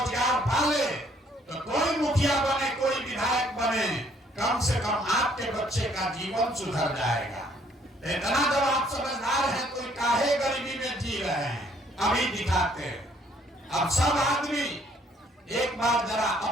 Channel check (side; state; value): both; normal; correlation 0.64